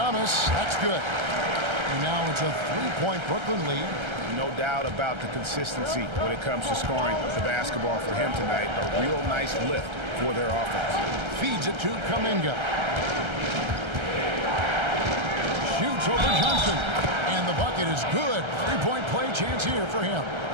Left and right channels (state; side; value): late; left; 1.3 ms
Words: that's good. And now it's a 3-point Brooklyn lead. No doubt about the consistency when it comes to scoring the basketball for him tonight. A real nice lift for their offense. Feeds it to Kuminga. Shoots over Johnson. And the bucket is good. 3-point play chance here for him.